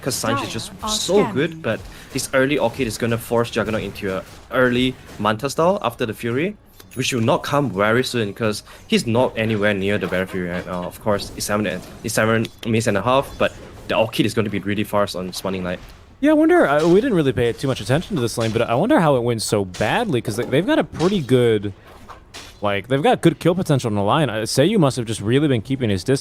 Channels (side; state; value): both; identical; correlation 1.00